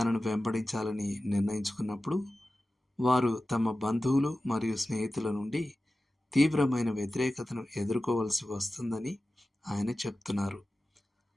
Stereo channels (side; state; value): both; normal; correlation 0.95